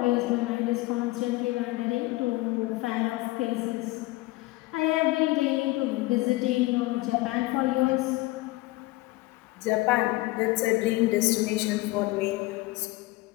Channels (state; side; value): quieter; right; 20.3 dB